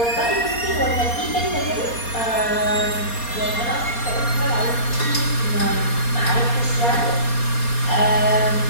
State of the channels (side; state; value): right; late; 4.3 ms